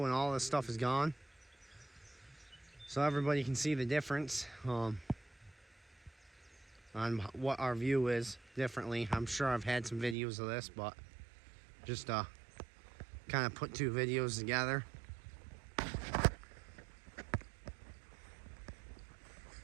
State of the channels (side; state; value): left; drops out; at 10.2 s